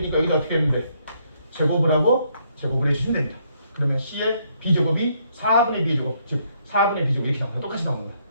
여기다 어떻게 했는데 제곱을 하고 제곱을 해주시면 됩니다. 그러면 C의 B제곱이 4분의 B제곱, 즉 4분의 B제곱 이렇게 나옵니다. 똑같이 나옵니다.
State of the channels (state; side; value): inverted; both; correlation -0.71